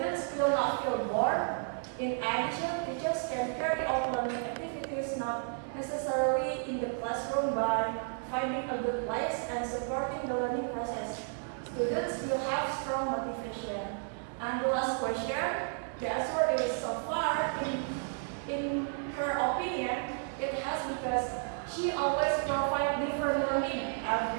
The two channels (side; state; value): left; silent; 56 dB below the other